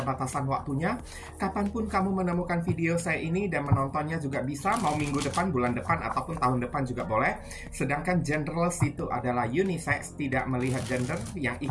waktunya, kapanpun kamu menemukan video saya ini dan menontonnya juga bisa, mau minggu depan, bulan depan, ataupun tahun depan juga boleh. Sedangkan genderless itu adalah unisex, tidak melihat gender. Yang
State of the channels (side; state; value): both; identical; correlation 1.00